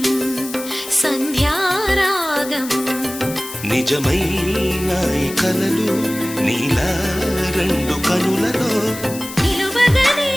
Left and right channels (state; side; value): noise; left; hiss, 12 dB below the sound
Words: సంధ్యారాగం నిజమైన ఈ కలలు